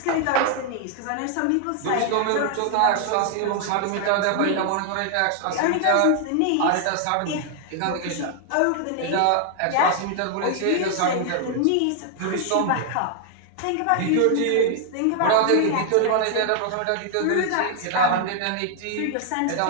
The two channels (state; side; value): different; both; correlation 0.00